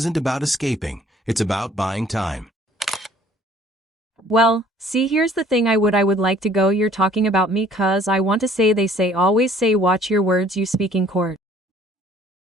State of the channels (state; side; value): normal; both; correlation 0.56